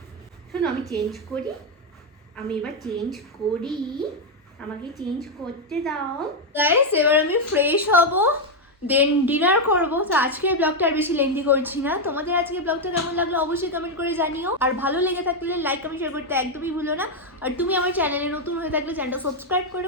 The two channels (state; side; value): normal; both; correlation 0.03